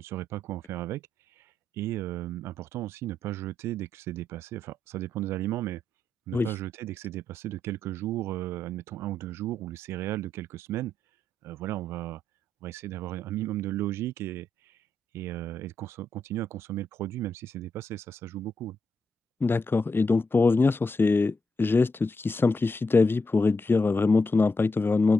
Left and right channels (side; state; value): both; normal; correlation 0.81